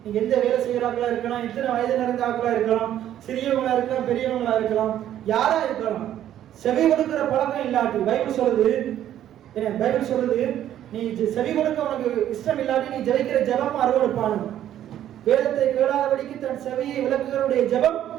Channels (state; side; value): quieter; left; 11.5 dB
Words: நீங்க எந்த வேலை செய்யறாங்களா இருக்கலாம், எத்தனை வயது நிறைந்த ஆக்களா இருக்கலாம், சிறியவங்களா இருக்கலாம், பெரியவங்களா இருக்கலாம், யாரா இருக்கலாம், செவி கொடுக்கிற பழக்கம் இல்லாட்டி, பைபிள் சொல்றது நீ செவி கொடுக்க உனக்கு இஷ்டம் இல்லாட்டி நீ ஜெபிக்கிற ஜெபம் அருவருப்பானது. வேதத்தை கேளாதபடிக்கு தன் செவியை விளக்குகிறவருடைய ஜெபம்